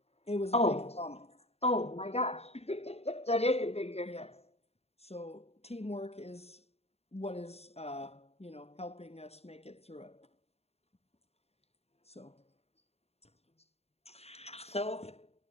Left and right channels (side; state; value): right; late; 0.30 ms